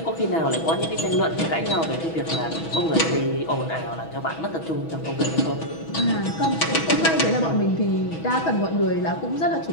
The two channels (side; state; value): right; late; 6.2 ms